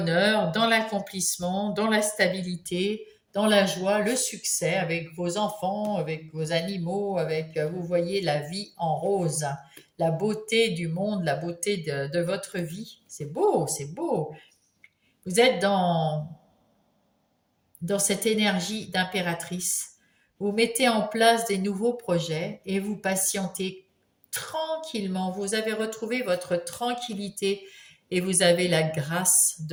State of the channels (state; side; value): identical; both; correlation 1.00